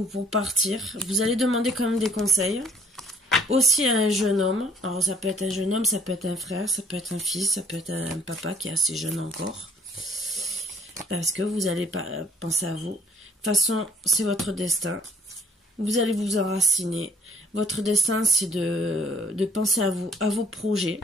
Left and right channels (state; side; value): normal; both; correlation 0.58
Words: pour partir. Vous allez demander quand même des conseils. Aussi à un jeune homme. Alors ça peut être un jeune homme, ça peut être un frère, ça peut être un fils, ça peut être un papa qui est assez jeune encore. Parce que vous allez penser à vous. De toute façon, c'est votre destin. Vous allez vous enraciner. Votre destin, c'est de penser à vous, à vos projets.